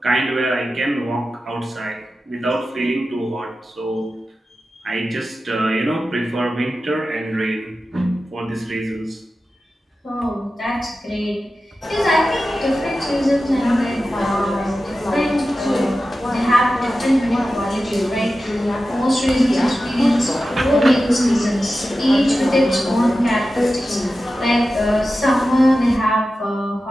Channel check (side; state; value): both; normal; correlation 0.93